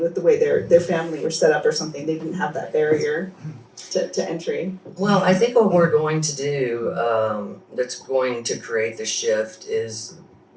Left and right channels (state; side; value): identical; both; correlation 1.00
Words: the way their family were set up or something. They didn't have that barrier to entry. Well, I think what we're going to do that's going to create the shift is,